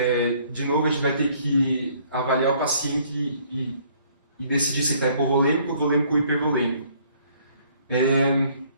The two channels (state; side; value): inverted; both; correlation -0.61